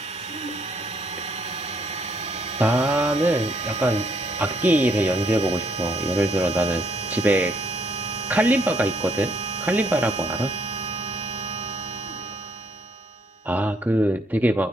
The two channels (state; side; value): normal; both; correlation 0.70